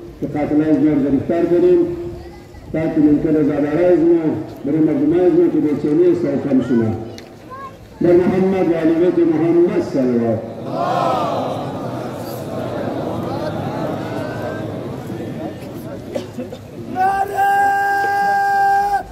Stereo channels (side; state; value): both; identical; correlation 1.00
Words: که قاتله از ما گرفتار کنیم تاکه ممکن از اداره از ما برای مردم از ما که بیچینی است و کم شما در محمد و علی بیت محمد صلوات.